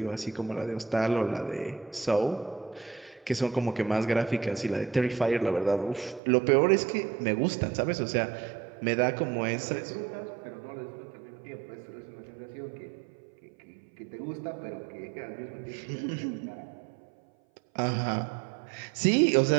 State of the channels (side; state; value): left; drops out; at 6.2 s